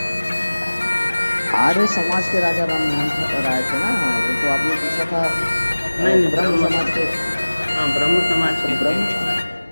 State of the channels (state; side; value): inverted; both; correlation -1.00